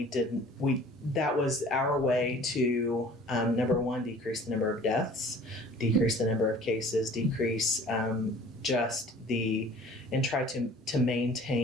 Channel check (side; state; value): both; normal; correlation 0.49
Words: didn't, that was our way to, number one, decrease the number of deaths, decrease the number of cases, decrease and try to